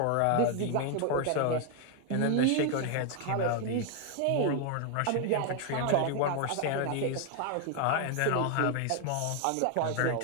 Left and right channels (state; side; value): different; both; correlation 0.00